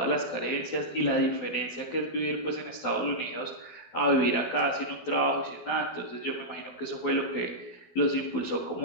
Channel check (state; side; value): late; right; 12 ms